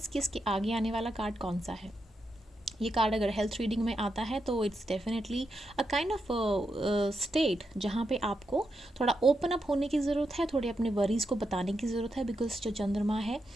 कि इसके आगे आने वाला कार्ड कौन सा है। ये कार्ड अगर हेल्थ रीडिंग में आता है तो it's definitely a kind of state जहाँ पे आपको थोड़ा ओपन अप होने की ज़रूरत है, थोड़े अपने वरीज़ को बताने की ज़रूरत है, बिकॉज जो चंद्रमा है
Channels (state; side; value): normal; both; correlation 0.85